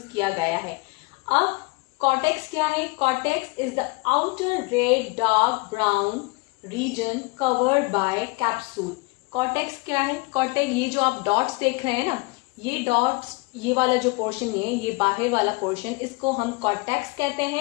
किया गया है। अब कॉर्टेक्स क्या है, cortex is the outer red dark brown region covered by capsule. Cortex क्या है, कॉर्टेक्स ये जो आप डॉट्स देख रहे हैं ना, ये डॉट्स, ये वाला जो पोर्शन है, ये बाहर वाला पोर्शन, इसको हम कॉर्टेक्स कहते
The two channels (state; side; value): quieter; right; 26.3 dB